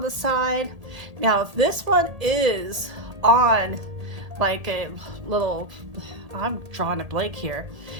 the side. Now this one is on like a little, I'm drawing a blank here,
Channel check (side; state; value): left; late; 1.8 ms